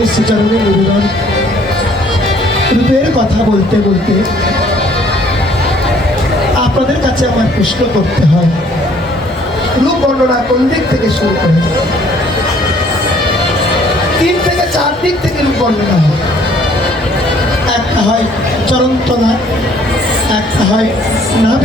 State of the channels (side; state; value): both; normal; correlation 0.60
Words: শ্রীচরণে নিবেদন। রূপের কথা বলতে বলতে আপনাদের কাছে আমার প্রশ্ন করতে হয়, রূপ বর্ণনা কোন দিক থেকে শুরু করে? 3 থেকে 4 দিক থেকে রূপ বর্ণনা হয়। একটা হয় চরণতলা, একটা হয়